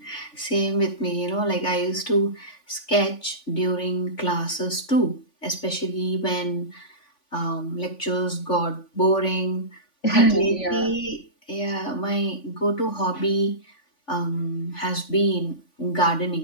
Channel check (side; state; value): right; late; 3.5 ms